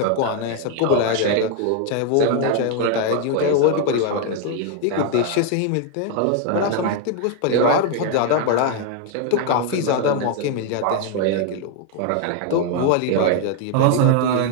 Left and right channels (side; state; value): both; different; correlation 0.00